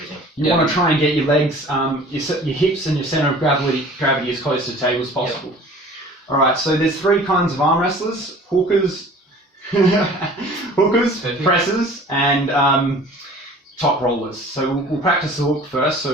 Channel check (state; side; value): normal; both; correlation 0.46